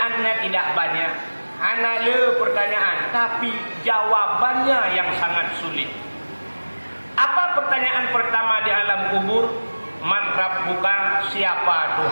tidak banyak, hanya pertanyaan, tapi jawabannya yang sangat sulit. Apa pertanyaan pertama di alam kubur? Man rabbuka, siapa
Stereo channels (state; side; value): inverted; both; correlation -1.00